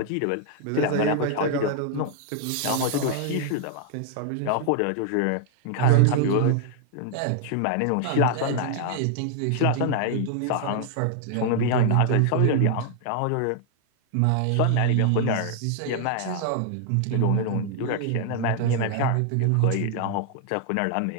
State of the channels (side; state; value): both; different; correlation 0.00